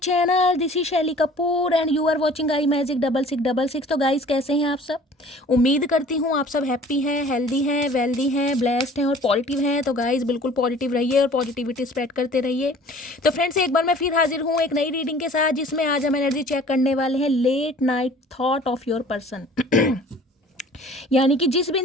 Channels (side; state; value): both; normal; correlation 0.49